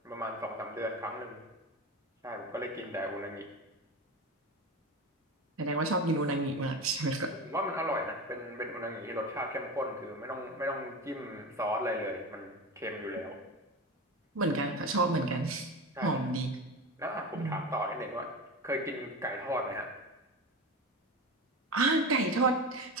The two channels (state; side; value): normal; both; correlation 0.26